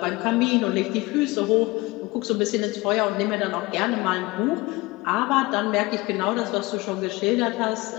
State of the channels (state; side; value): quieter; right; 22.1 dB